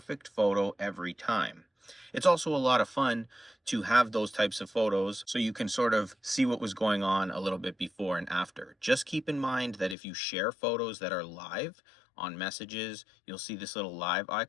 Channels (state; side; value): drops out; right; at 10.0 s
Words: photo every time. It's also a lot of fun to have those types of photos so you can sort of see what was going on a little bit before and after. Just keep in mind that if you share photos that are live on messages, you'll see this little live